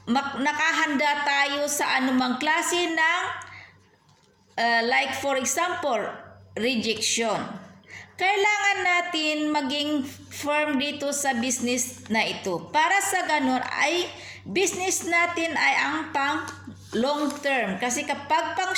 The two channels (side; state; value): both; identical; correlation 1.00